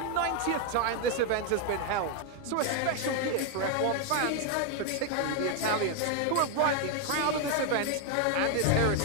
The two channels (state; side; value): different; both; correlation 0.01